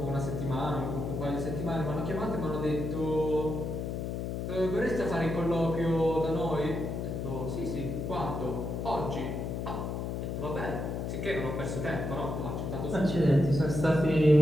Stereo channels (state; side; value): noise; left; hum, 3 dB below the sound